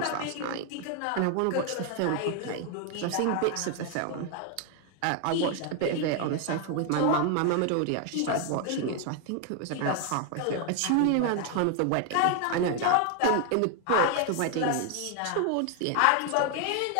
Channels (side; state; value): both; different; correlation 0.01